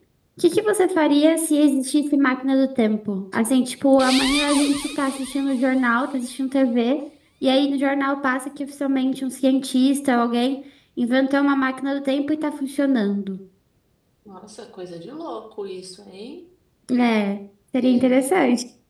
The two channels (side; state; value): both; identical; correlation 1.00